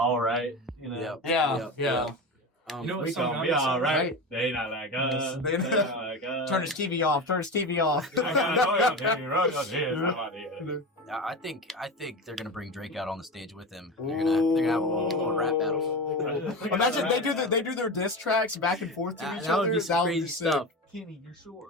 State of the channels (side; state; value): both; normal; correlation 0.24